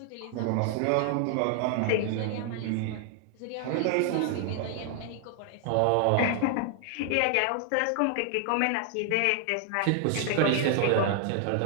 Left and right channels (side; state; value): both; different; correlation 0.00